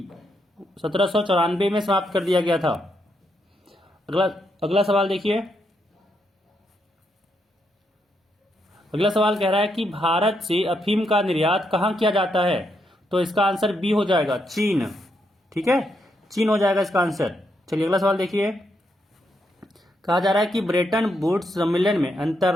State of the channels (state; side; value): normal; both; correlation 0.79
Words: 1794 में समाप्त कर दिया गया था। अगला सवाल देखिए। अगला सवाल कह रहा है कि भारत से अफीम का निर्यात कहां किया जाता है, तो इसका आंसर बी हो जाएगा, चीन। ठीक है, चीन हो जाएगा इसका आंसर। चलिए अगला सवाल देखिए। कहा जा रहा है कि ब्रेटन वुड्स सम्मेलन में